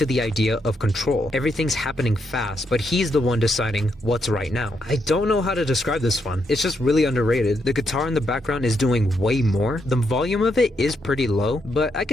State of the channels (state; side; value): normal; both; correlation 0.79